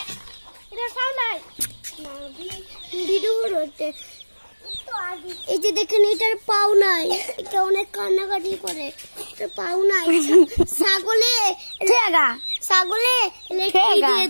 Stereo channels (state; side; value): inverted; both; correlation -1.00